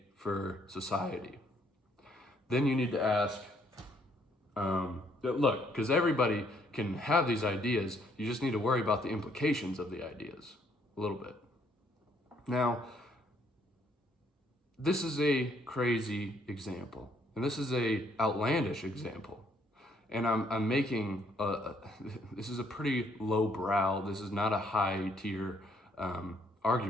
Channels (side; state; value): both; normal; correlation 0.68